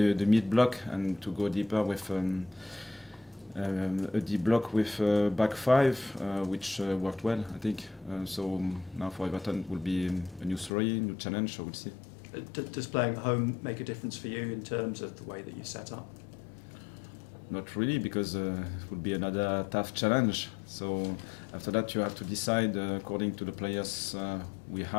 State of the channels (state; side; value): drops out; right; at 10.7 s